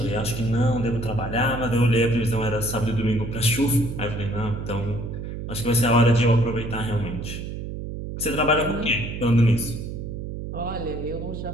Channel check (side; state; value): right; noise; hum, 7 dB below the sound